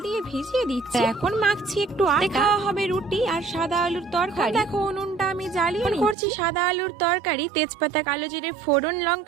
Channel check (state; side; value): drops out; left; at 6.2 s